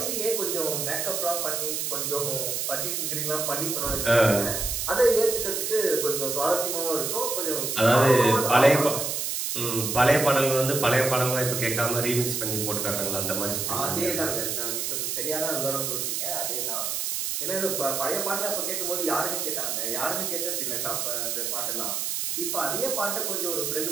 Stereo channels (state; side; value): noise; right; hiss, 1 dB below the sound